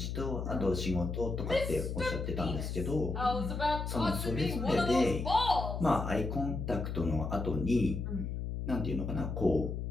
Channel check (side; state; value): left; noise; hum, 4 dB below the sound